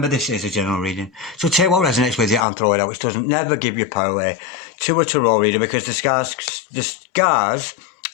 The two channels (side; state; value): right; drops out; at 2.5 s